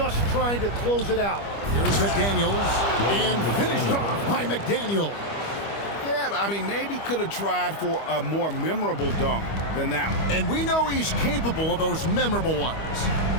trying to close it out. Here's McDaniels, and finished off by McDaniel. Yeah, I mean, maybe could have tried for a more memorable dunk than that one. And we know he's capable of those memorable ones.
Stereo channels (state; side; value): late; right; 25 ms